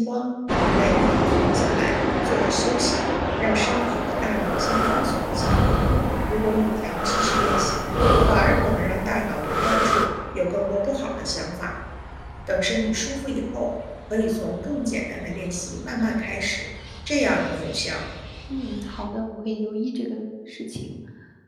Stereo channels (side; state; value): both; identical; correlation 1.00